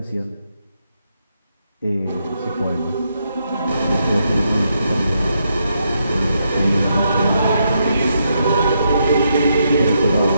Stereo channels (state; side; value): inverted; both; correlation -0.79